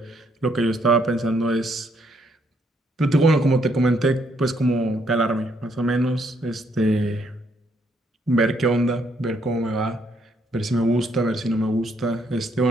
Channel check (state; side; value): normal; both; correlation 0.71